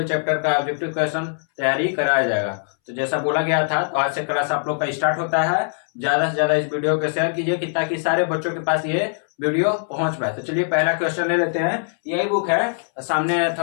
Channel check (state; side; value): silent; right; 64 dB below the other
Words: चैप्टर का ऑब्जेक्टिव क्वेश्चन तैयारी कराया जाएगा। तो जैसा बोला गया था, तो आज से क्लास आप लोग का स्टार्ट होता है। ज्यादा से ज्यादा इस वीडियो को शेयर कीजिए कि ताकि सारे बच्चों के पास ये वीडियो पहुंच पाए। तो चलिए पहला क्वेश्चन ले लेते हैं। यही बुक है, सामने